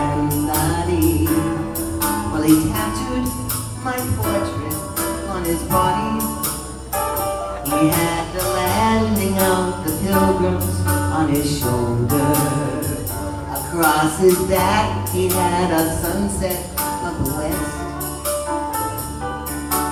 well, he tattooed my portrait on his body. He had the landing of the pilgrims on his shoulder. Across his back he had a sunset of the west.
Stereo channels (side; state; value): both; identical; correlation 1.00